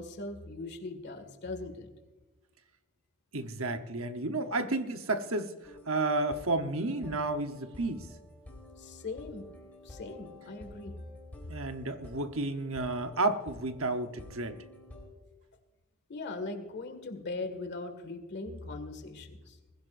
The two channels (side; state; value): both; normal; correlation -0.05